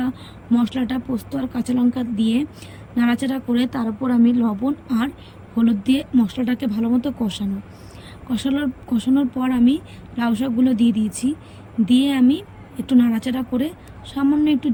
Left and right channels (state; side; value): identical; both; correlation 1.00